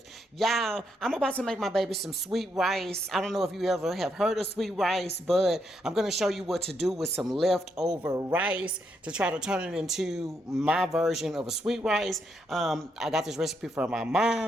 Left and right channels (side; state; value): both; normal; correlation 0.78